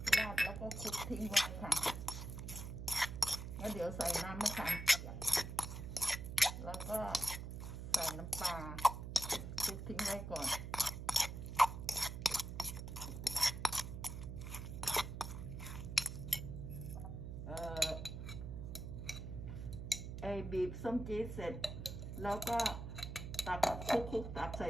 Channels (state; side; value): noise; right; hum, 7 dB below the sound